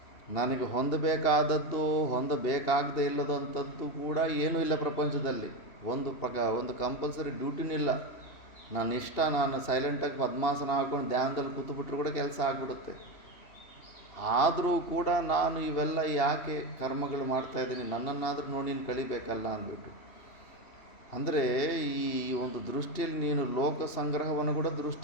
ನನಗೆ ಹೊಂದಬೇಕಾದದ್ದು ಹೊಂದಬೇಕಾಗದೇ ಇಲ್ಲದಂಥದ್ದು ಕೂಡ ಏನೂ ಇಲ್ಲ ಪ್ರಪಂಚದಲ್ಲಿ. ಒಂದು ಕಂಪಲ್ಸರಿ ಡ್ಯೂಟಿನೂ ಇಲ್ಲ. ನಾನು ಇಷ್ಟ, ನಾನು ಸೈಲೆಂಟಾಗಿ ಪದ್ಮಾಸನ ಹಾಕ್ಕೊಂಡು ಧ್ಯಾನದಲ್ಲಿ ಕೂತ್ಬಿಟ್ರು ಕೂಡ ಕೆಲಸ ಆಗಿಬಿಡುತ್ತೆ. ಆದರೂ ಕೂಡ ನಾನು ಇವೆಲ್ಲ ಯಾಕೆ ಕರ್ಮಗಳು ಮಾಡ್ತಾಯಿದ್ದೀನಿ, ನನ್ನನ್ನಾದರೂ ನೋಡಿ ನೀನು ಕಳಿಬೇಕಲ್ಲ ಅಂದ್ಬಿಟ್ಟು. ಅಂದರೆ ಈ ಒಂದು ದೃಷ್ಟಿಯಲ್ಲಿ ನೀನು ಲೋಕ ಸಂಗ್ರಹವನ್ನು ಕೂಡ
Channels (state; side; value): late; right; 3.0 ms